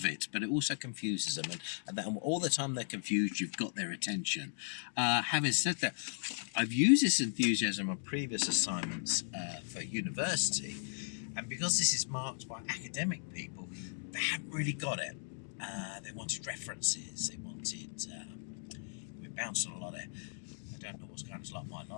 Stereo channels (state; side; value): silent; right; digital silence